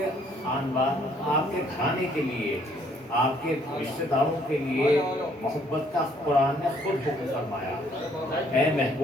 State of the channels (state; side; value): normal; both; correlation 0.64